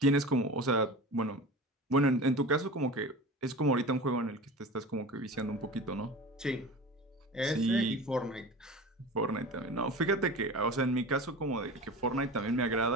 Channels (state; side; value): normal; both; correlation 0.33